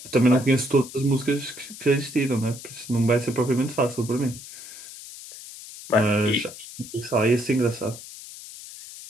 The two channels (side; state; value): left; noise; hiss, 14 dB below the sound